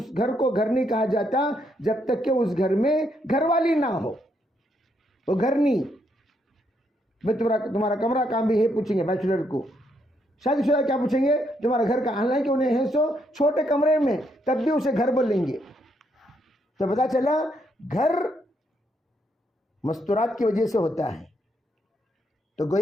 گھر کو گھر نہیں کہا جاتا جب تک کہ اس گھر میں گھر والی نہ ہو، وہ گھر نہیں۔ بھائی تمہارا کمرہ کام بھی ہے پوچھیں گے بیچلر کو. شادی شدہ کیا پوچھیں گے؟ تمہارا گھر کا، حالانکہ انہیں ہے سو چھوٹے کمرے میں تب بھی اسے گھر بولیں گے. تو پتا چلا گھر مستورات کی وجہ سے ہوتا ہے. تو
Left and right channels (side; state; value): both; normal; correlation 0.75